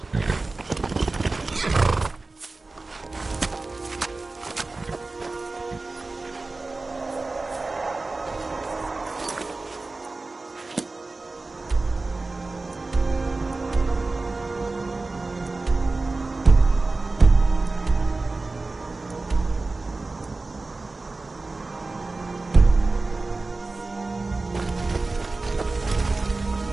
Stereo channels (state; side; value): quieter; left; 3.4 dB